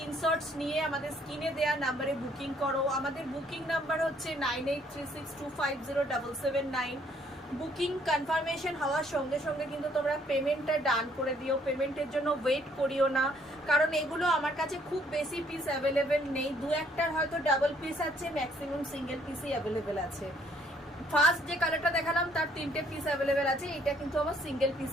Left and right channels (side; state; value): both; normal; correlation 0.65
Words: নিয়ে আমাদের স্ক্রিনে দেওয়া নাম্বারে বুকিং করো। আমাদের বুকিং নাম্বার হচ্ছে 9836250779। বুকিং কনফার্মেশন হওয়ার সঙ্গে সঙ্গে কিন্তু তোমরা পেমেন্টটা ডান করে দিও, পেমেন্টের জন্য ওয়েট করিও না, কারণ এগুলো আমার কাছে খুব বেশি পিস অ্যাভেলেবেল নেই, দু একটার হয়তো ডাবল পিস আছে, ম্যাক্সিমাম সিঙ্গেল পিসই অ্যাভেলেবেল আছে। ফার্স্ট যে কালারটা দেখালাম তার 3টে পিস অ্যাভেলেবেল আছে, এটা কিন্তু আমার সিঙ্গেল